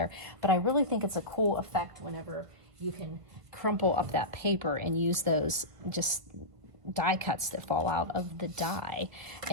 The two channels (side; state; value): left; late; 1.4 ms